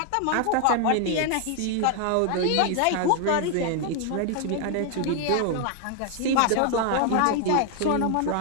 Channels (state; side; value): different; both; correlation 0.00